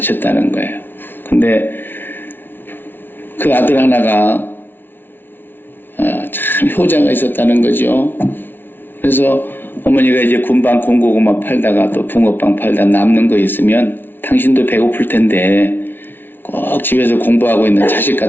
거예요. 근데 그 아들 하나가 참 효자가 있었다는 거죠. 그래서 어머니가 이제 군밤 군고구마 팔다가 또 붕어빵 팔다 남는 거 있으면 당신도 배고플 텐데 꼭 집에서 공부하고 있는 자식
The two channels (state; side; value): late; right; 0.099 ms